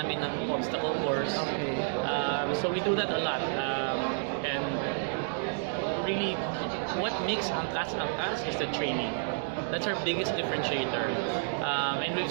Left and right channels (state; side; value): silent; left; digital silence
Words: ng obstacle course. Okay. So we do that a lot. And really, what makes Angkas is the training. That's our biggest differentiator. And we've